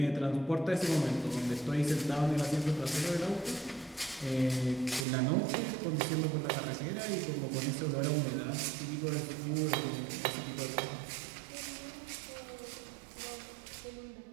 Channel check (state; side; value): drops out; left; at 5.1 s